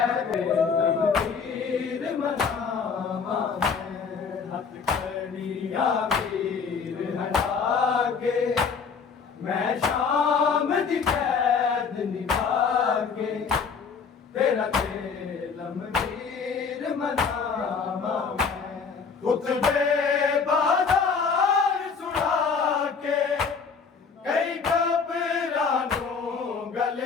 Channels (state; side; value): quieter; right; 5.6 dB